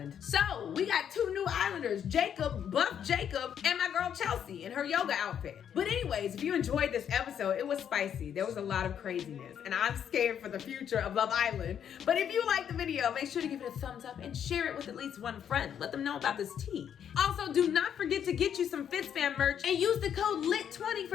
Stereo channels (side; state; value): right; quieter; 8.8 dB